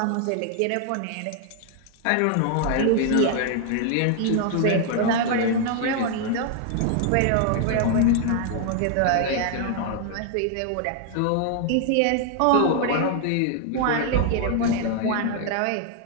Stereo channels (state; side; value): different; both; correlation 0.00